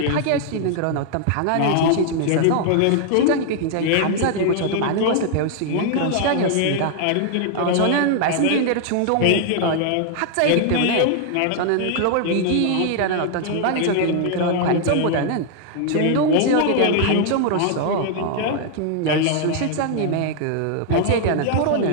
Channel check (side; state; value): both; different; correlation 0.00